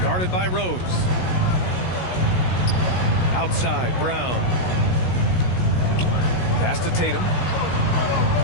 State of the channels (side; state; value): right; late; 16 ms